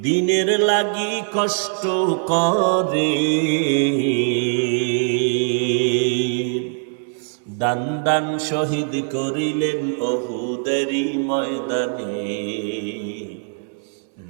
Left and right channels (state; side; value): silent; left; 65 dB below the other